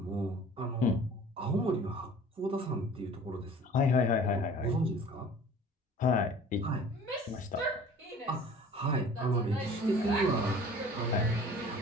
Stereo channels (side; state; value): both; normal; correlation 0.47